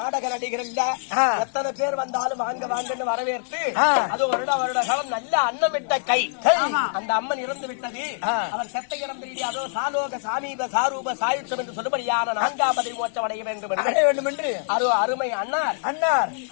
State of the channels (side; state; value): right; silent; digital silence